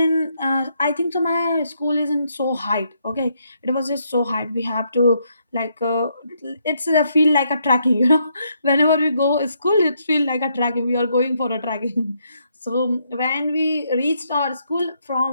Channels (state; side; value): inverted; both; correlation -0.75